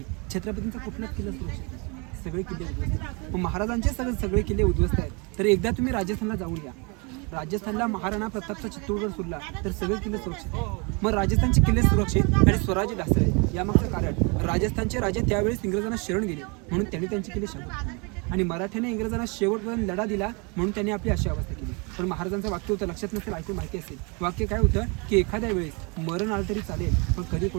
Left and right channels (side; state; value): left; quieter; 31.5 dB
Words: छत्रपतींचा कुठलाच किल्ला सुरक्षित नाही, सगळे किल्ले उद्ध्वस्त आहेत. पण महाराजांचे सगळे किल्ले उद्ध्वस्त आहेत. तर एकदा तुम्ही राजस्थानला जाऊन या. राजस्थानला महाराणा प्रतापचा चित्तोडगड सोडला तर सगळे किल्ले सुरक्षित. मग राजस्थानचे किल्ले सुरक्षित आणि स्वराज्य ढासळले यामागचं कारण राजस्थानचे राजे त्यावेळेस इंग्रजांना शरण गेले म्हणून त्यांनी त्यांचे किल्ले शाबूत आणि मराठ्याने इंग्रजांना शेवटपर्यंत लढा दिला म्हणून त्यांनी आपली अशी अवस्था केली. पण महाराजांचं वाक्य होतं, लक्षात नसेल ऐकून माहिती असेल, वाक्य काय होतं की एखाद्या वेळेस मरण आलं तरी चालेल पण कधी